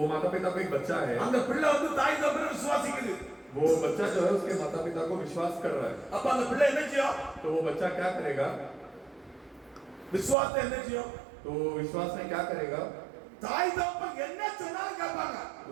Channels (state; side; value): drops out; left; at 10.4 s